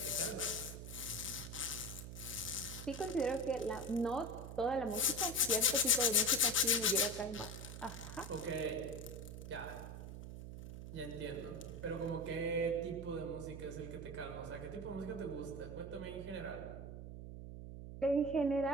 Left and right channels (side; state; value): right; noise; hum, 9 dB below the sound